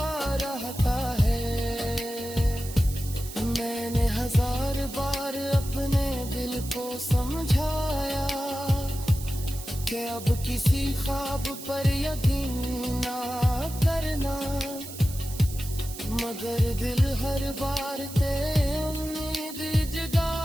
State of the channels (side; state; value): right; noise; hiss, 12 dB below the sound